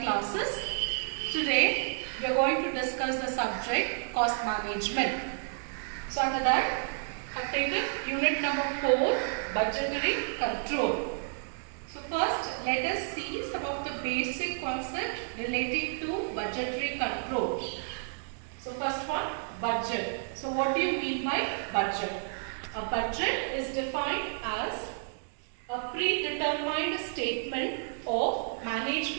classes. Today we are going to discuss the subject cost management. So under that I have taken unit number 4, budgetary control. So first let us see some of the basic concepts relating to budgetary control. So first one, budget. So what do you mean by budget? A budget is defined as a predetermined statement of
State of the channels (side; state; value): left; silent; digital silence